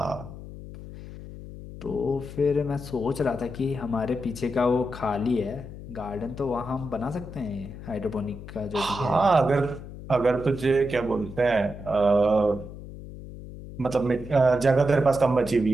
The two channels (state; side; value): noise; left; hum, 13 dB below the sound